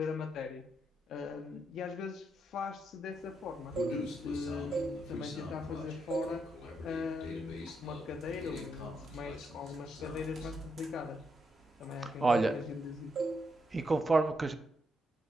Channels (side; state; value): both; normal; correlation 0.80